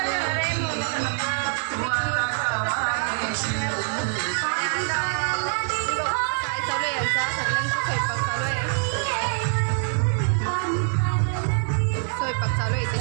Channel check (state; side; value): silent; left; digital silence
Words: आहे म्हणून काय चालू आहे यांचा सगळ्यांचा स्वयंपाक चालू आहे. स्वयंपाक चालू आहे